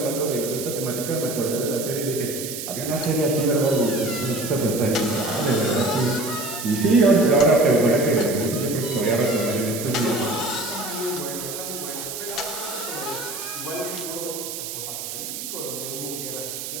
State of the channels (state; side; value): noise; right; hiss, 7 dB below the sound